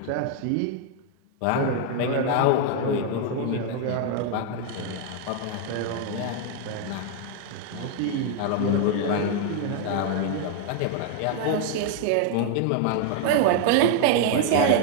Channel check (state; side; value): different; both; correlation 0.00